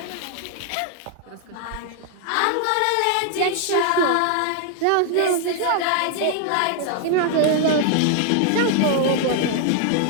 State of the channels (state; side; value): different; both; correlation 0.00